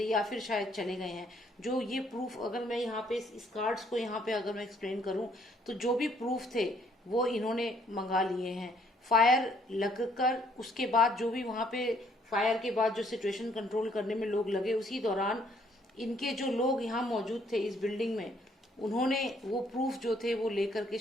या फिर शायद चले गए हैं। जो ये प्रूफ, अगर मैं यहाँ पे इस कार्ड्स को यहाँ पे अगर मैं एक्सप्लेन करूँ, तो जो भी प्रूफ थे वो इन्होंने मंगा लिए हैं। फायर लगकर उसके बाद जो भी वहां पे फायर के बाद जो सिचुएशन कंट्रोल करने में लोग लगे, उसी दौरान इनके जो लोग यहाँ मौजूद थे इस बिल्डिंग में, उन्होंने वो प्रूफ जो थे वो लेकर के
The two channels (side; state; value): both; normal; correlation 0.66